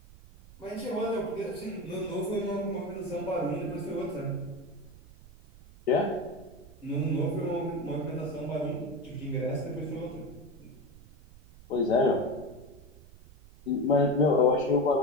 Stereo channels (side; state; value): right; noise; rumble, 21 dB below the sound